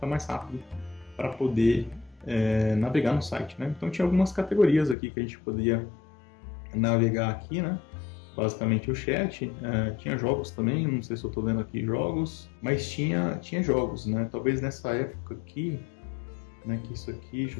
mais rápido para poder navegar no site, né? Então tinha algumas categorias aqui que a gente podia navegar aqui, né? Basicamente o chat, tinha jogos também, não sei se eu estou vendo aqui jogos, mas tinha jogos, né? Talvez nessa época aqui, né? Que isso aqui, deixa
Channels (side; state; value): right; drops out; at 5.0 s